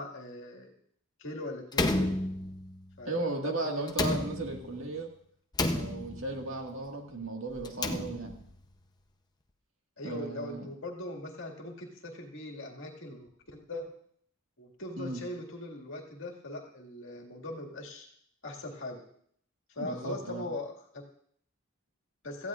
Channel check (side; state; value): both; normal; correlation 0.34